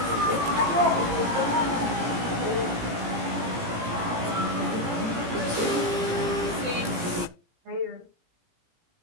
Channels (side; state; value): left; late; 17 ms